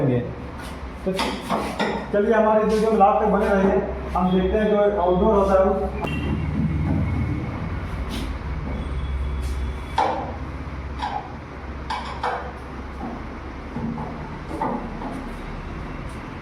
तो चलिए हमारे वीडियो में लास्ट तक बने रहिए। हम देखते हैं जो आउटडोर होता है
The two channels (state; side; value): identical; both; correlation 1.00